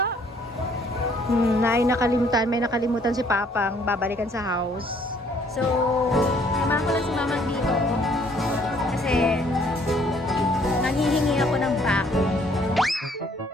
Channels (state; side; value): normal; both; correlation 0.62